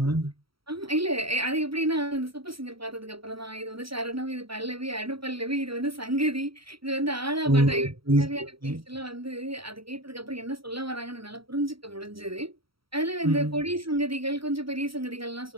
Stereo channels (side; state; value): left; late; 0.75 ms